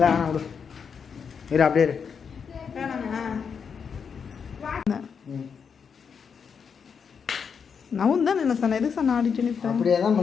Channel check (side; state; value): right; quieter; 6.5 dB